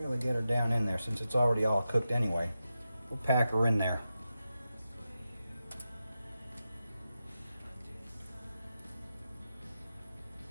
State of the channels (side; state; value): both; inverted; correlation -0.90